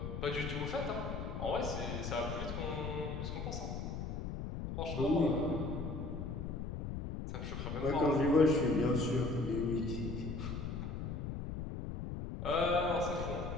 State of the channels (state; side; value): noise; left; rumble, 5 dB below the sound